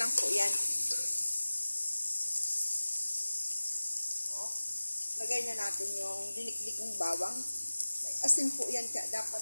po yan. Oh. Lagay na natin yung diniklikong bawang. May asin po yan, kaya dapat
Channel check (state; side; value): inverted; both; correlation -1.00